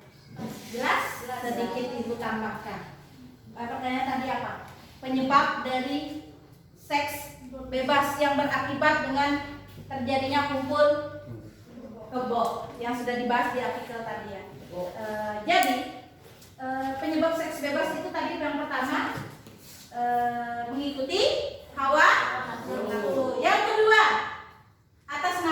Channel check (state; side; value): identical; both; correlation 1.00